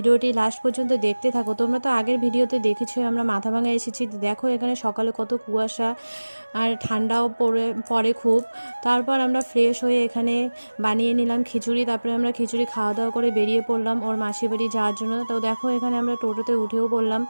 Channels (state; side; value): inverted; both; correlation -1.00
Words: লাস্ট পর্যন্ত দেখতে থাকো। তোমরা তো আগের ভিডিওতে দেখেছো আমরা মাথাভাঙা এসেছি। দেখো এখানে সকালে কত কুয়াশা আর ঠান্ডাও পড়ে খুব। তারপর আমরা ফ্রেশ হয়ে এখানে বানিয়ে নিলাম খিচুড়ি। তারপরে আমরা খিচুড়ি খাওয়া দাওয়া করে বেরিয়ে পড়লাম ওর মাসি বাড়ি যাওয়ার জন্য। তো দেখো এখানে আমরা টোটোতে উঠেও পড়লাম।